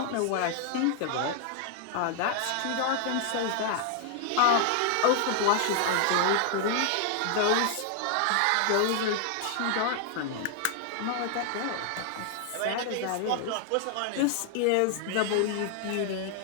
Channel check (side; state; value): both; different; correlation 0.00